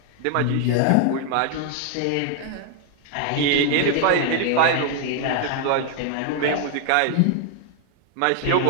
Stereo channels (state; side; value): different; both; correlation 0.00